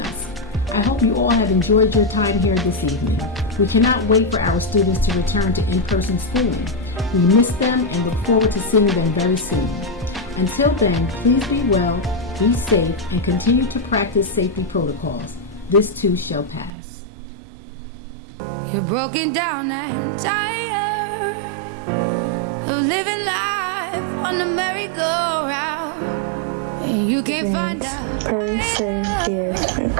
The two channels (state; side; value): drops out; left; at 16.7 s